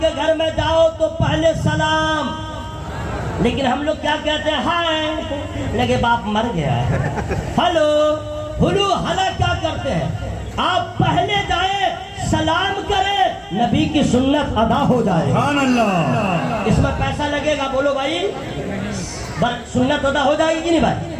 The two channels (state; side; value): identical; both; correlation 1.00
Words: کے گھر میں جاؤ تو پہلے سلام، لیکن ہم لوگ کیا کہتے ہیں؟ ہائے لگے باپ مر گیا ہے، ہلو ہلو ہلا کیا کرتے ہیں؟ آپ پہلے جائیں سلام کریں، نبی کی سنت ادا ہو جائے۔ سبحان اللہ۔ اس میں پیسہ لگے گا، بولو بھائی سنت ادا ہو جائے گی کہ نہیں بھائی؟